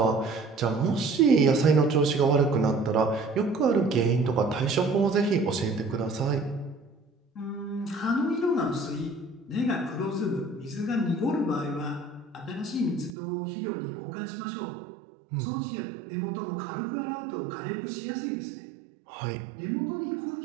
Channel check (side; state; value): left; drops out; at 13.1 s